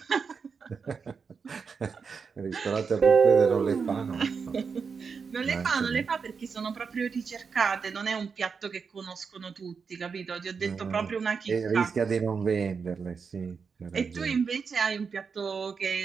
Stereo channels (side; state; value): left; quieter; 5.6 dB